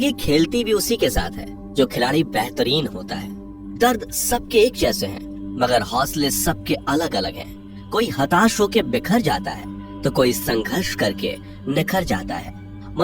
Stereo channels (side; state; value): both; identical; correlation 1.00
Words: खेलती भी उसी के साथ है जो खिलाड़ी बेहतरीन होता है। दर्द सबके एक जैसे हैं, मगर हौसले सबके अलग अलग हैं। कोई हताश होकर बिखर जाता है तो कोई संघर्ष करके निखर जाता है।